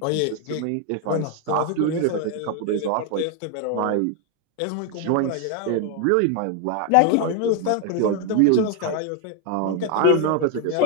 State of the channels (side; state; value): both; different; correlation 0.01